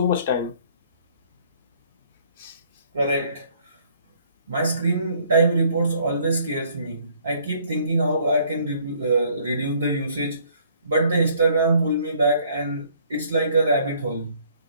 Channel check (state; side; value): inverted; both; correlation -0.61